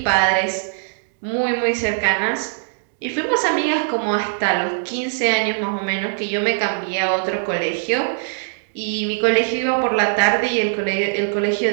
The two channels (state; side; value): silent; left; digital silence